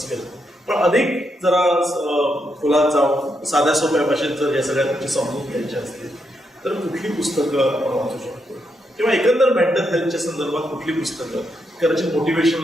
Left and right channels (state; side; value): normal; both; correlation 0.81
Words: केला, पण अधिक जरा खोलात जाऊन साध्या सोप्या भाषेत जर या सगळ्या गोष्टी समजून घ्यायच्या असतील तर कुठली पुस्तकं आपण वाचू शकतो, किंवा एकंदर मेंटल हेल्थच्या संदर्भात कुठली पुस्तकं, कदाचित